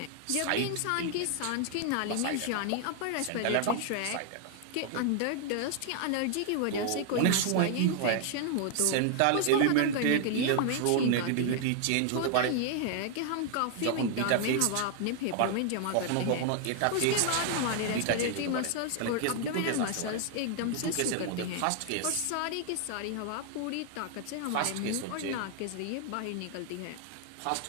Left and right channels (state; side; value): different; both; correlation 0.00